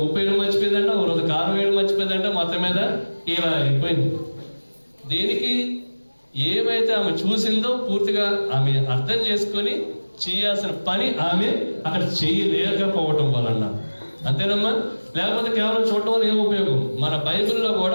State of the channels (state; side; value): inverted; both; correlation -1.00